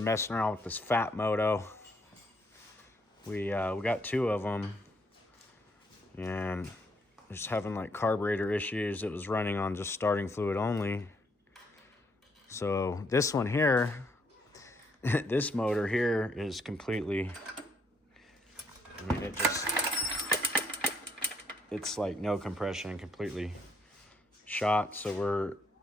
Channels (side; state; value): both; normal; correlation 0.71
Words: messing around with this fat moto. We got 2 of them, and just having like carburetor issues. It was running on just starting fluid only. So this one here, this motor here is completely, I mean, it's like no compression, completely shot. So we're